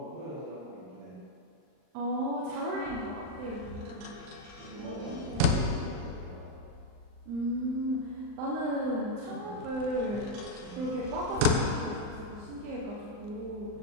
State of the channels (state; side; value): late; left; 39 ms